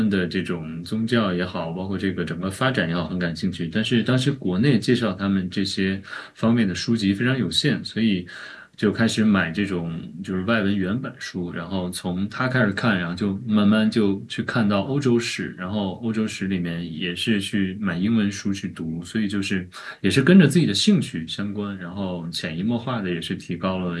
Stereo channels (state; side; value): identical; both; correlation 1.00